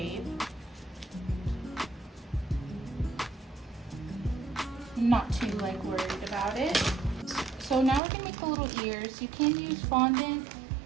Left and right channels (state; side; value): drops out; left; at 8.0 s